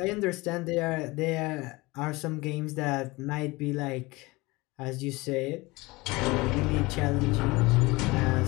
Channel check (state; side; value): quieter; right; 22.7 dB